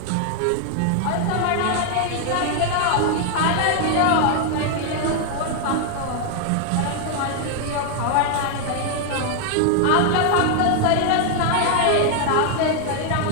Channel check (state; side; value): different; both; correlation 0.00